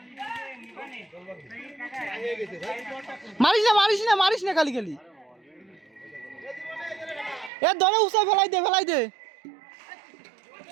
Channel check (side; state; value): left; drops out; at 7.5 s